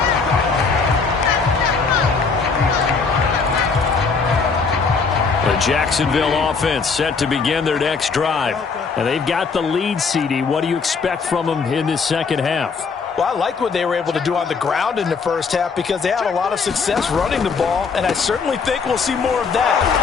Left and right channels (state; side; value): quieter; right; 5.1 dB